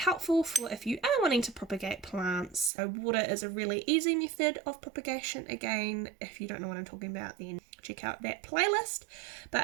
for if you are wanting to propagate plants. So water is a really easy method of propagation. Again, if you don't know what I'm talking about, then check out that playlist.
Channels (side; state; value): left; drops out; at 2.7 s